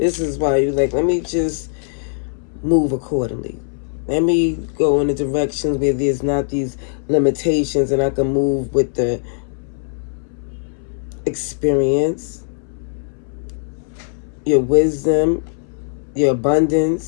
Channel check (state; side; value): silent; right; 66 dB below the other